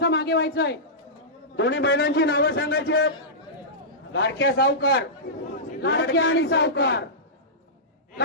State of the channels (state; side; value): normal; both; correlation -0.16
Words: मागे व्हायचं आहे. दोन्ही बैलांची नावं सांगायची आहेत. लाडक्या सावकार. लाडक्या आणि सावकार.